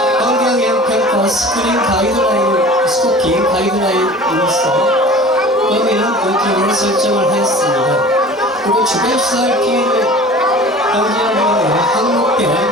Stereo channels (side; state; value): both; normal; correlation 0.42